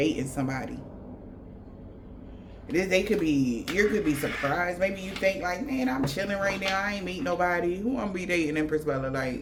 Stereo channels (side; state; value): both; identical; correlation 1.00